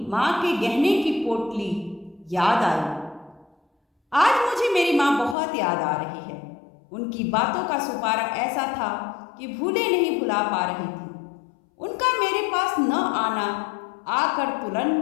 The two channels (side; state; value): right; drops out; at 5.4 s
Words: माँ के गहने की पोटली याद आई। आज मुझे मेरी माँ बहुत याद आ रही है। उनकी बातों का सुपारा ऐसा था कि भूले नहीं भुला पा रही थी। उनका मेरे पास न आना, आकर